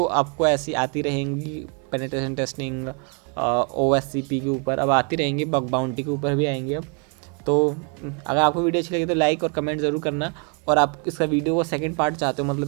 आपको ऐसी आती रहेंगी पेनिट्रेशन टेस्टिंग OSCP के ऊपर, अब आती रहेंगी, बग बाउंटी के ऊपर भी आएंगे अब। तो अगर आपको वीडियो अच्छी लगी तो लाइक और कमेंट ज़रूर करना। और आप इसका वीडियो का सेकंड पार्ट चाहते हो,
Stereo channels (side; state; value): left; quieter; 36.1 dB